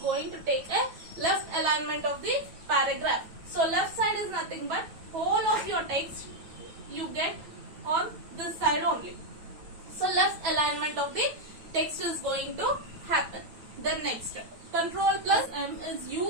to take a left alignment of the paragraph. So left side is nothing but whole of your text you get on this side only. So left alignment of the text is going to happen. Then next, Control plus M is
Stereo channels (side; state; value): left; late; 9.2 ms